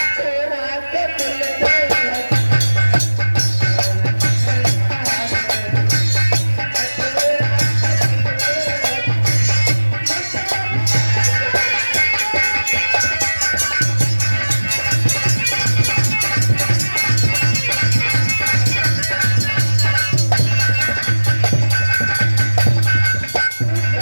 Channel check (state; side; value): inverted; both; correlation -1.00